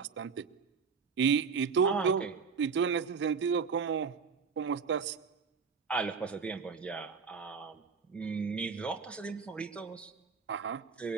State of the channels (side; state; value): left; quieter; 5.7 dB